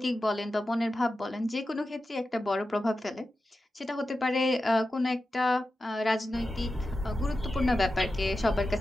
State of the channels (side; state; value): both; normal; correlation 0.92